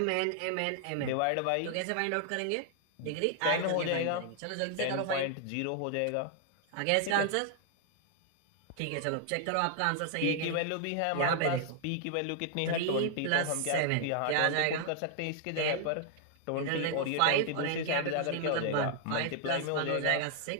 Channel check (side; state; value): both; different; correlation 0.00